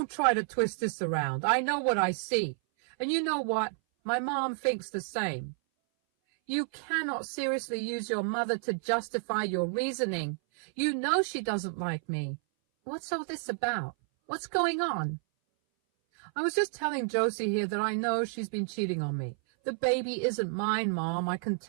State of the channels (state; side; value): silent; left; 57 dB below the other